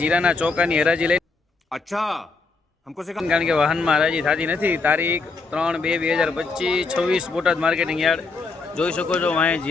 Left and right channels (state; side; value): quieter; right; 4.1 dB